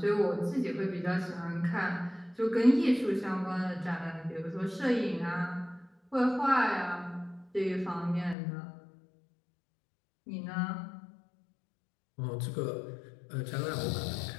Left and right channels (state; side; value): drops out; right; at 8.3 s